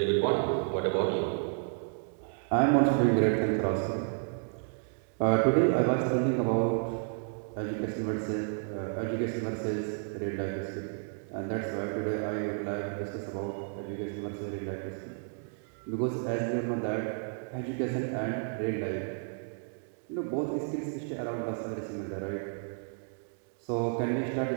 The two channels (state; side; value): silent; left; 56 dB below the other